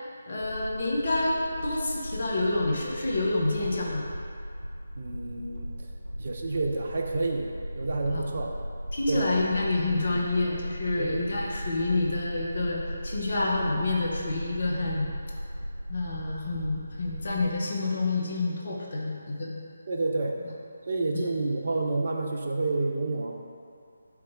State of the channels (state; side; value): inverted; both; correlation -0.87